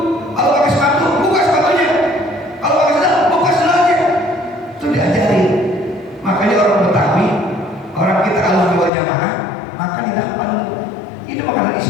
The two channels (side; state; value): right; drops out; at 8.9 s